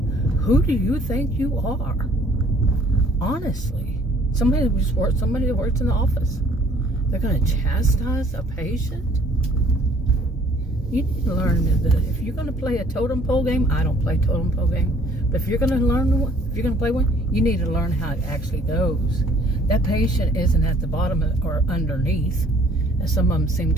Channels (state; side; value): normal; both; correlation 0.58